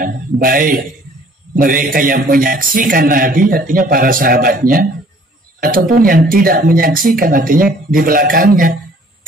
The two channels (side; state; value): both; normal; correlation 0.56